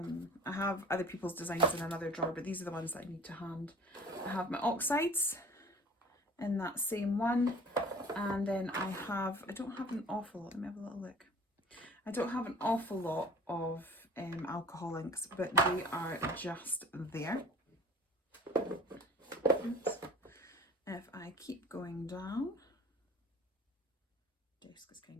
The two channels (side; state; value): both; normal; correlation 0.46